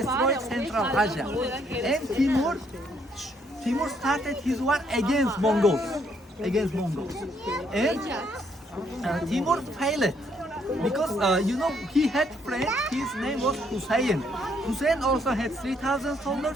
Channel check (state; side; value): normal; both; correlation 0.70